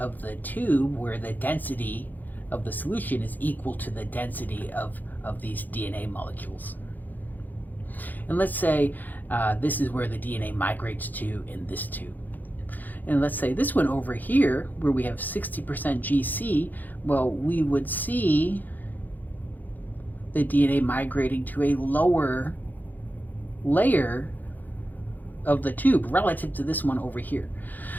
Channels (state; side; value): late; right; 0.085 ms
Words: the tube where the density of the solution is equal to the density of these DNA molecules. And let's say this is where the DNA migrates to in this tube. And let's say this one over here, where we have 60% GC, well, we would see the DNA migrating to a lower layer of the tube relative to this one over here.